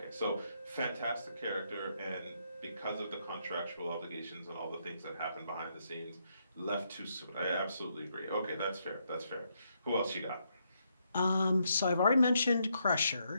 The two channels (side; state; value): both; inverted; correlation -0.77